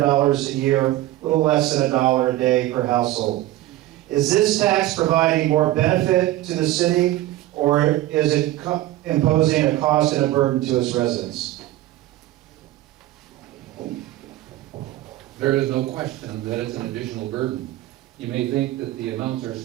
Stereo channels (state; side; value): quieter; left; 15.6 dB